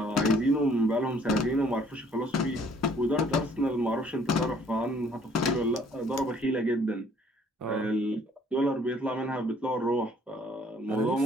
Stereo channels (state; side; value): normal; both; correlation 0.60